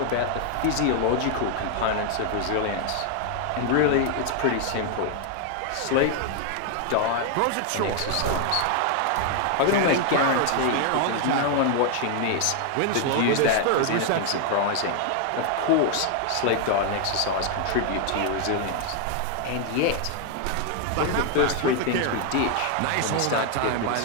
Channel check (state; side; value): different; both; correlation 0.00